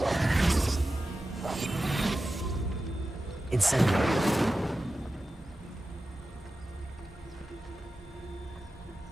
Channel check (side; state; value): both; normal; correlation 0.93